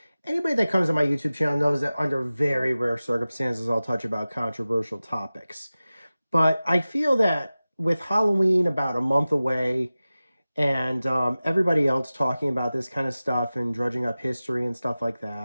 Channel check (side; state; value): both; inverted; correlation -0.96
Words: Anybody that comes to my YouTube channel knows that under very rare circumstances I'll touch about controversial topics. But I feel that with Halloween about a month away and everybody else talking about this kind of stuff and drudging up history and stuff like